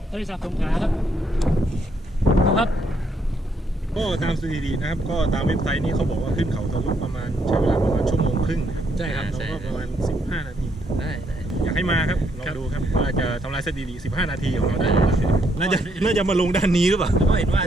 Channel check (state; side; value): normal; both; correlation 0.73